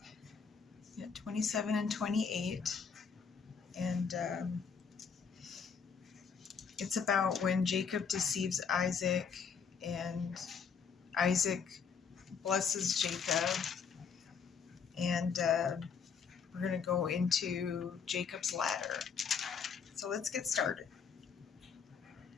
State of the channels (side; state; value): right; quieter; 6.3 dB